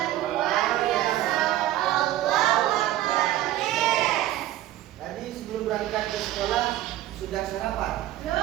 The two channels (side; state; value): left; quieter; 14.1 dB